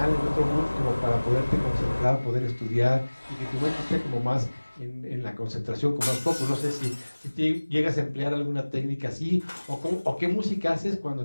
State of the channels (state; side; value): inverted; both; correlation -1.00